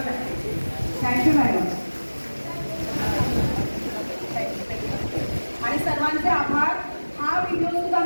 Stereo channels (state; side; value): inverted; both; correlation -1.00